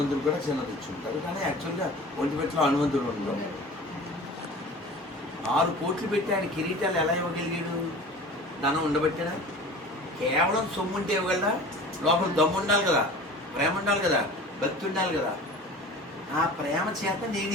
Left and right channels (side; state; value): both; normal; correlation 0.40